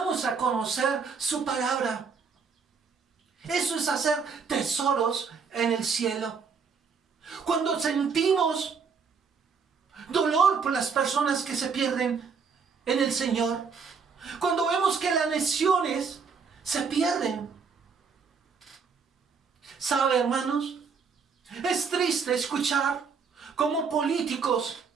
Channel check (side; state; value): left; quieter; 5.6 dB